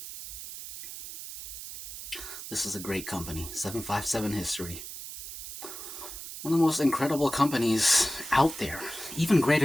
this is a great company, 757 History. One of the most incredible companies out there, even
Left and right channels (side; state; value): right; noise; hiss, 10 dB below the sound